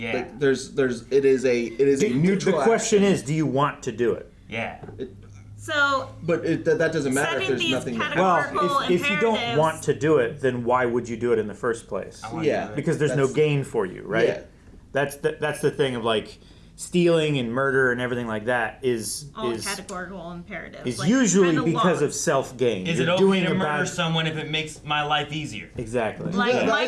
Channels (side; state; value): both; identical; correlation 1.00